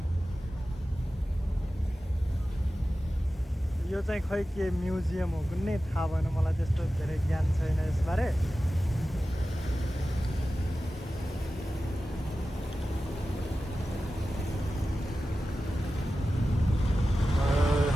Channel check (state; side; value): normal; both; correlation 0.94